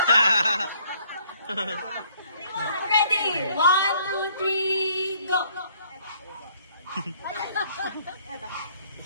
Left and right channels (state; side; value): inverted; both; correlation -0.63